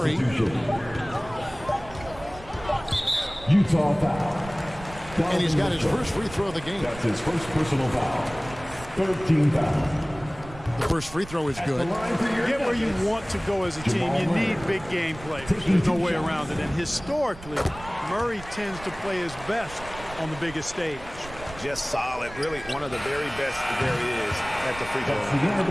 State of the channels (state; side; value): noise; right; rumble, 16 dB below the sound